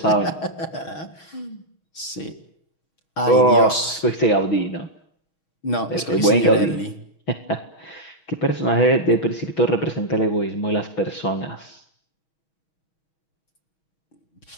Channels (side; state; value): right; late; 6.3 ms